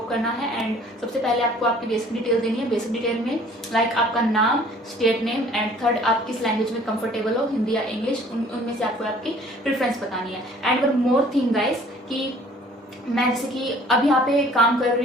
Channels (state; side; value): normal; both; correlation 0.54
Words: करना है एंड सबसे पहले आपको आपकी बेसिक डिटेल देनी है। बेसिक डिटेल में लाइक आपका नाम, स्टेट नेम एंड थर्ड आप किस लैंग्वेज में कंफर्टेबल हो, हिंदी या इंग्लिश, उनमें से आपको आपकी प्रेफरेंस बतानी है। And one more thing guys कि मैं जैसे कि अब यहाँ पे काम कर